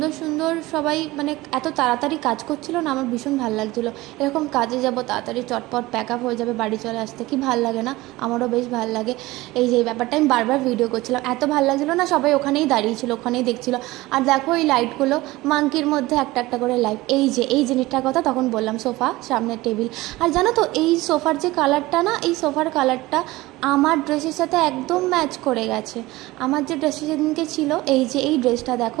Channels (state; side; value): quieter; left; 19.4 dB